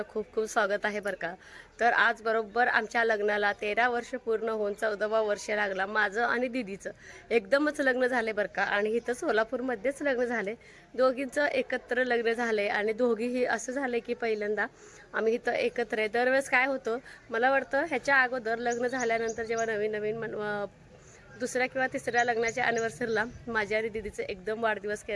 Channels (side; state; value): both; identical; correlation 1.00